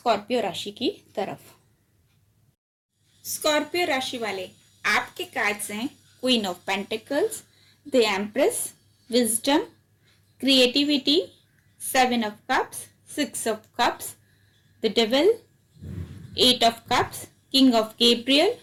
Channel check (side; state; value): both; identical; correlation 1.00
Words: राशि की तरफ। स्कॉर्पियो राशि वाले, आपके कार्ड्स हैं queen of pentacles, the empress, wisdom, creativity, seven of cups, six of cups, the devil, eight of cups, king of Gabriel,